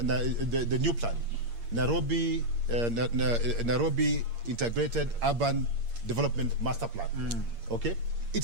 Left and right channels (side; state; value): left; late; 8.6 ms